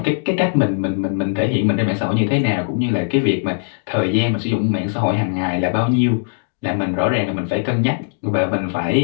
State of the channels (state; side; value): silent; right; digital silence